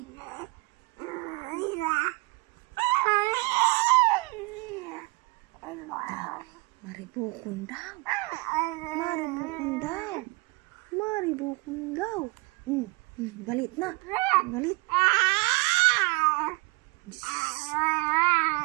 Maribukon daw. Maribukon daw. Maribukon daw. Galit na. Galit.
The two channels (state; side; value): quieter; left; 25.9 dB